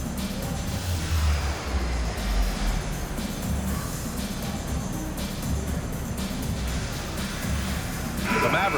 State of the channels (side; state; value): both; identical; correlation 1.00